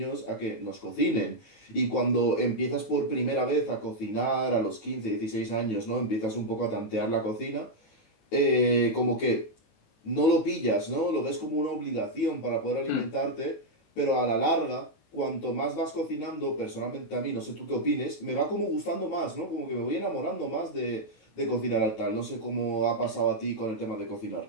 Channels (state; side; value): late; right; 19 ms